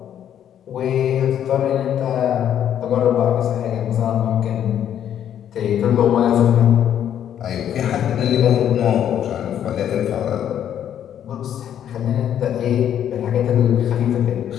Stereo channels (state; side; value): quieter; right; 10.0 dB